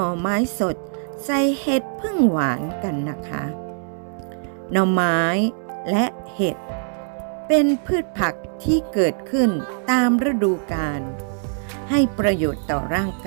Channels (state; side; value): silent; left; digital silence